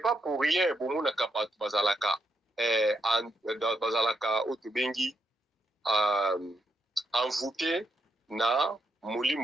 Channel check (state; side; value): normal; both; correlation 0.79